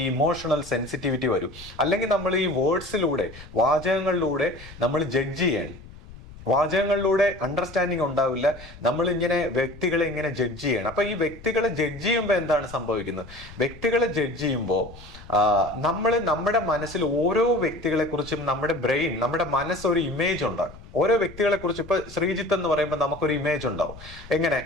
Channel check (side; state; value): left; noise; rumble, 18 dB below the sound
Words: ഇമോഷണൽ സെൻസിറ്റിവിറ്റി വരൂ. അല്ലെങ്കിൽ നമ്മൾ ഈ വേർഡ്സിലൂടെ, വാചകങ്ങളിലൂടെ നമ്മൾ ജഡ്ജ് ചെയ്യണം. വാചകങ്ങളിലൂടെ അണ്ടർസ്റ്റാൻഡിങ് ഉണ്ടാവില്ല. നമ്മൾ വ്യക്തികളെ ഇങ്ങനെ ജഡ്ജ് ചെയ്യണം. അപ്പോൾ ഈ വ്യക്തികളെ ജഡ്ജ് ചെയ്യുമ്പോൾ എന്താണ് സംഭവിക്കുന്നത്? വ്യക്തികളെ ജഡ്ജ് ചെയ്യുമ്പോൾ നമ്മുടെ മനസ്സിൽ ഓരോ വ്യക്തികളെ കുറിച്ചും നമ്മുടെ ബ്രെയിൻ, നമ്മുടെ മനസ്സ് ഒരു ഇമേജ് ഉണ്ടാക്കും. ഓരോ വ്യക്തികളെ കുറിച്ച് ഇപ്പോൾ ശ്രീജിത്ത് എന്ന് പറയുമ്പോൾ നമുക്കൊരു ഇമേജ് ഉണ്ടാവും. എങ്ങനെ?